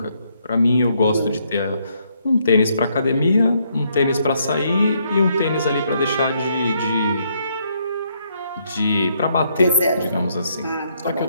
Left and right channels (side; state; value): both; inverted; correlation -0.73